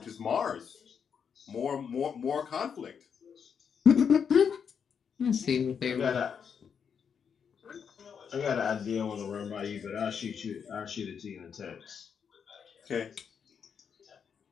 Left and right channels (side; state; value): right; quieter; 7.0 dB